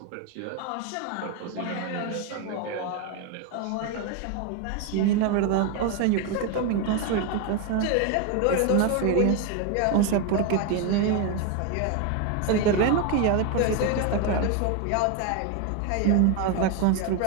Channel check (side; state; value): both; different; correlation 0.02